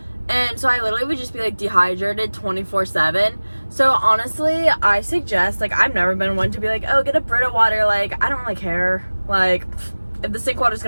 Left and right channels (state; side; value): inverted; both; correlation -1.00